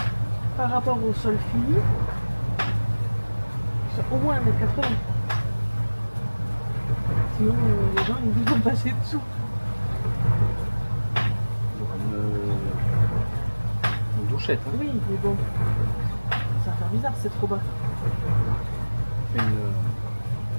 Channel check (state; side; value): inverted; both; correlation -1.00